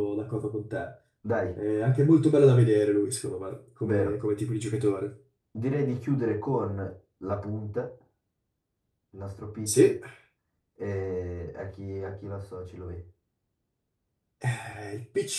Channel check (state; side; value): identical; both; correlation 1.00